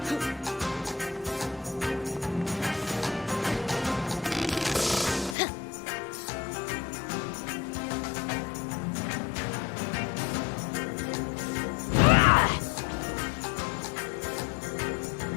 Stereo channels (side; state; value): right; drops out; at 5.4 s